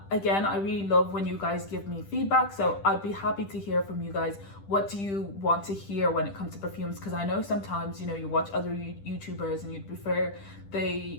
I really love when you guys give me feedback, so I'd be happy to hear from you guys. What do you want to hear when it comes to perfumes? Because I know sometimes, you watch other YouTubers and you'd prefer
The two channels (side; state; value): right; late; 10 ms